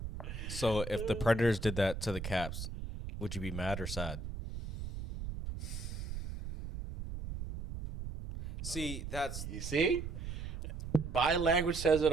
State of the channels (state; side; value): noise; right; rumble, 7 dB below the sound